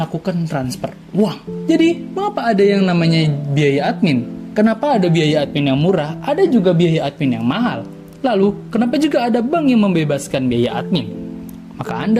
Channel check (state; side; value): identical; both; correlation 1.00